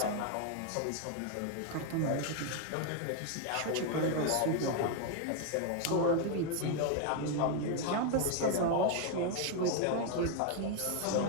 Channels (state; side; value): different; both; correlation 0.01